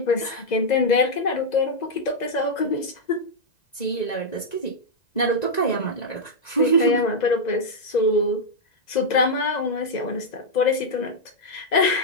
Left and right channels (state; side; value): late; right; 1.9 ms